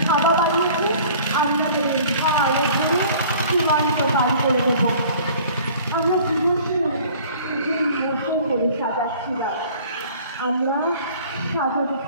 খাওয়া বানিয়েছে, আমরা ভালো করে সীমান্ত পার করে দেবো। আমরা জীবনকে বসে করে সাজাচ্ছিলাম, আমরা সাজাতে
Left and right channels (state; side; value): inverted; both; correlation -0.49